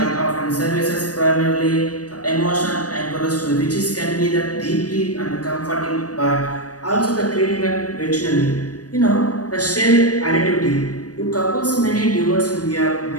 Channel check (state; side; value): late; right; 0.68 ms